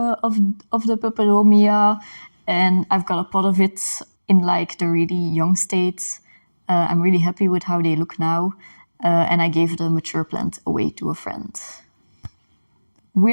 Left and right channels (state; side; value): inverted; both; correlation -1.00